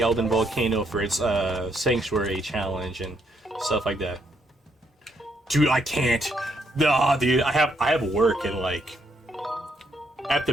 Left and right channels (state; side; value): normal; both; correlation 0.74